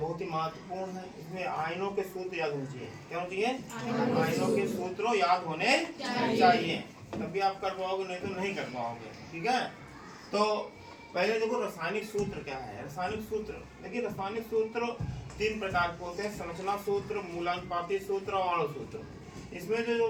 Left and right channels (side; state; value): both; identical; correlation 1.00